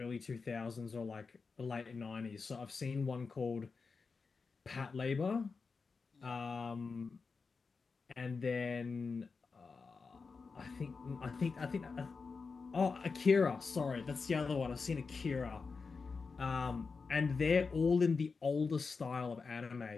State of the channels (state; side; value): quieter; right; 4.7 dB